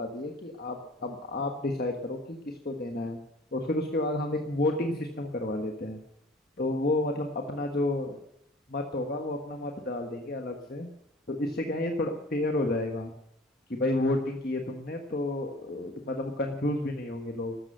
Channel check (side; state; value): both; normal; correlation 0.47